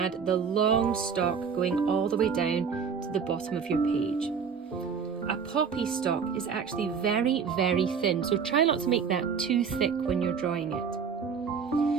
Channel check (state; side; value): quieter; left; 6.4 dB